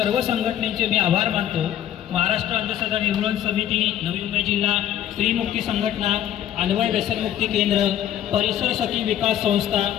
संघटनेचे मी आभार मानतो. महाराष्ट्र अंधश्रद्धा निर्मूलन समिती, नवी मुंबई जिल्हा स्त्रीमुक्ती संघटना, अन्वय व्यसनमुक्ती केंद्र, परिसर सखी विकास संस्था,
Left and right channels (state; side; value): quieter; right; 11.2 dB